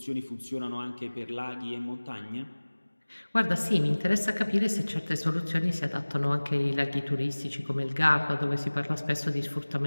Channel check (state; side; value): inverted; both; correlation -1.00